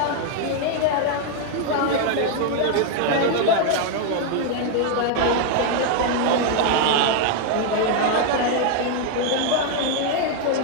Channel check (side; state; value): both; different; correlation 0.00